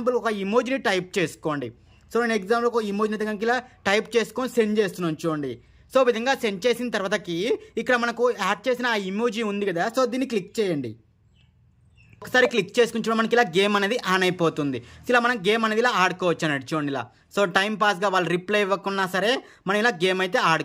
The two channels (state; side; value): identical; both; correlation 1.00